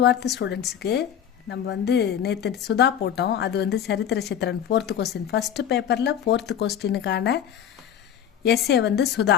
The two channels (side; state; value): right; quieter; 9.4 dB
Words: ஸ்டூடெண்ட்ஸுக்கு நம்ம நேற்று சுதா போட்டோம். அது சரித்திர சித்திரன் 4th கொஸ்டின், ஃபஸ்ட்டு பேப்பரில் 4th கொஸ்டினுக்கான எஸ்ஏ